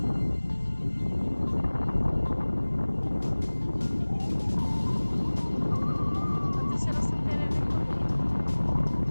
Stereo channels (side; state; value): both; inverted; correlation -1.00